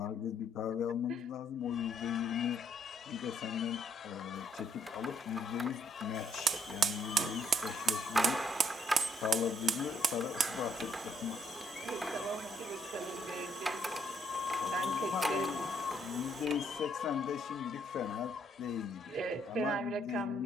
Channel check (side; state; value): both; normal; correlation 0.70